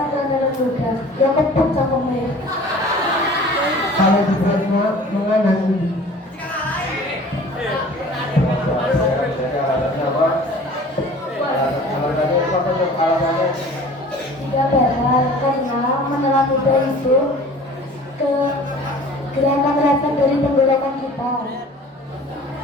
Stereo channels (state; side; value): normal; both; correlation 0.46